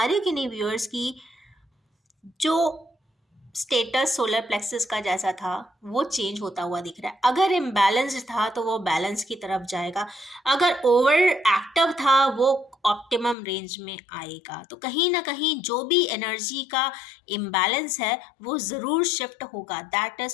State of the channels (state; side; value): drops out; right; at 13.4 s